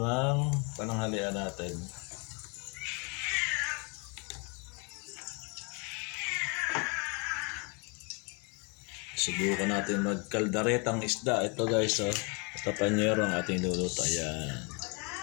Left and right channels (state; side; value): quieter; right; 33.0 dB